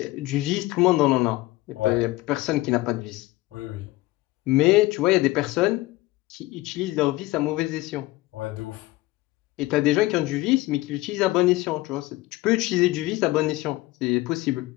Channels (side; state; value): right; quieter; 19.1 dB